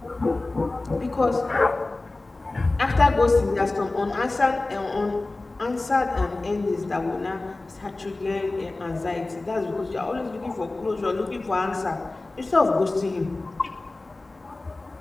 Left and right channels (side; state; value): right; quieter; 3.1 dB